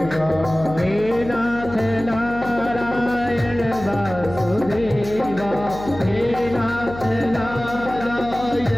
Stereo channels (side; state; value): left; noise; hum, 12 dB below the sound